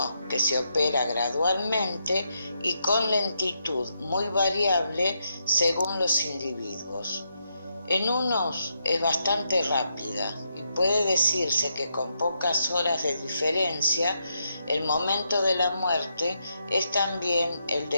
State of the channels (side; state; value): both; inverted; correlation -0.79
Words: que se opera gradualmente y con lentitud muy variable según los individuos. En unos es bastante rápida y puede decirse que con pocas horas de diferencia el momento de la muerte es también el